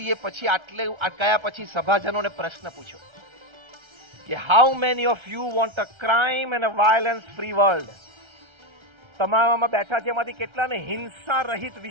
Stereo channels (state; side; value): late; left; 1.3 ms